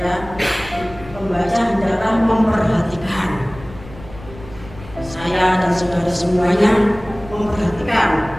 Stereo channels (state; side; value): noise; left; rumble, 17 dB below the sound